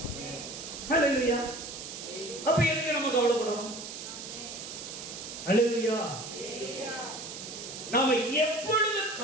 அல்லேலூயா. அப்ப எதுக்கு நம்ம கவலைப்படணும்? அல்லேலூயா. நாம எப்பொழுது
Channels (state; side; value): noise; right; hiss, 9 dB below the sound